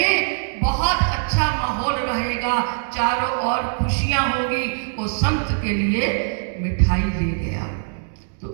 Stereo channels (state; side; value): silent; left; digital silence